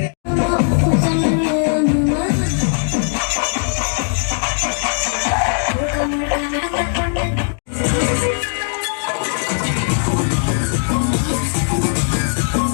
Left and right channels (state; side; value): silent; right; digital silence